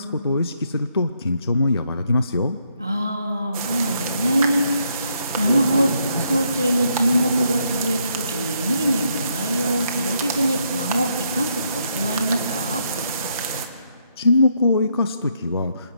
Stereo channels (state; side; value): inverted; both; correlation -0.75